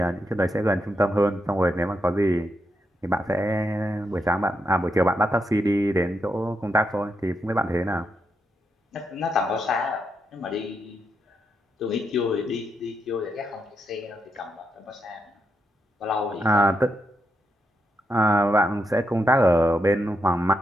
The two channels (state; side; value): normal; both; correlation 0.82